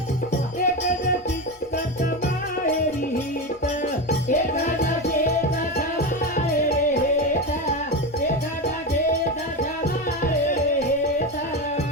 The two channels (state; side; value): normal; both; correlation 0.18